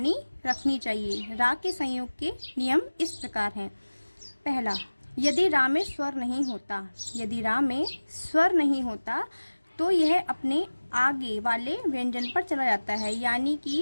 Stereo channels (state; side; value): inverted; both; correlation -1.00